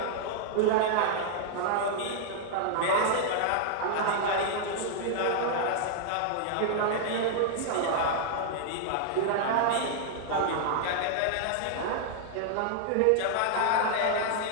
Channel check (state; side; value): different; both; correlation -0.01